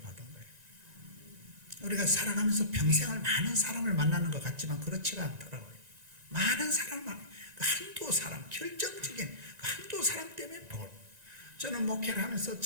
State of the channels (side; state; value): left; late; 1.9 ms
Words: 받은 거예요. 우리가 살아가면서 평생을 많은 사람을 만나는 것 같지만 그렇지가 않더라고요. 많은 사람만, 한두 사람, 결정적인 한두 사람 때문에 복을. 저는 목회를 하면서